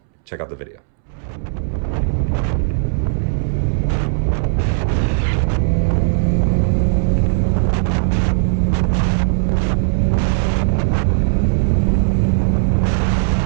Check out the video.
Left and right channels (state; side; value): silent; left; 68 dB below the other